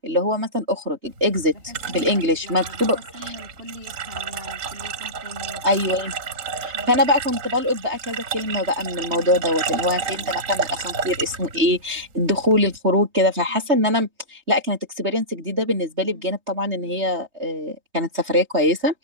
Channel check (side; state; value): left; late; 3.2 ms